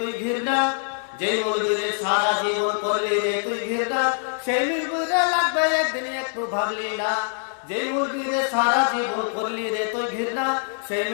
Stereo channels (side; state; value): right; silent; 63 dB below the other